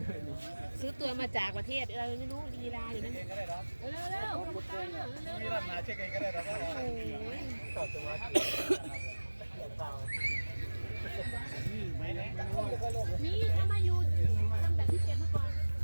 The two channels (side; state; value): both; inverted; correlation -1.00